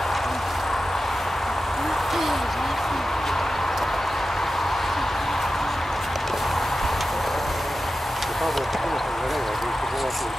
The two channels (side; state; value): both; normal; correlation 0.93